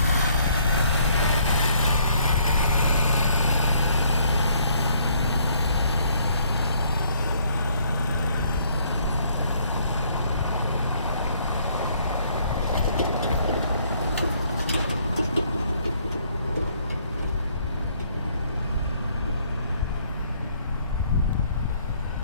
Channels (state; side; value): inverted; both; correlation -0.66